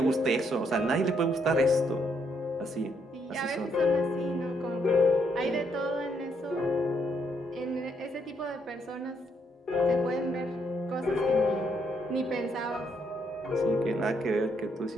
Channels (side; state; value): both; normal; correlation 0.74